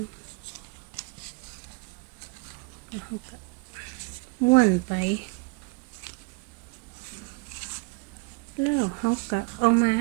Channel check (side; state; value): left; quieter; 29.3 dB